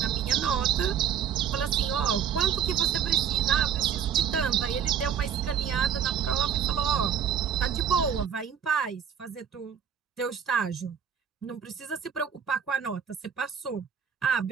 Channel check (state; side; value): quieter; left; 8.2 dB